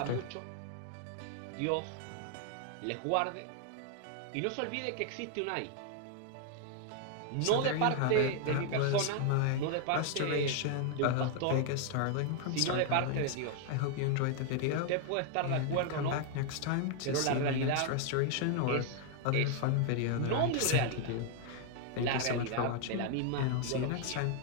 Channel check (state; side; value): different; both; correlation 0.00